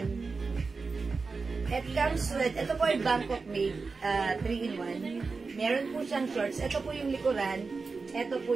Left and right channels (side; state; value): left; quieter; 4.4 dB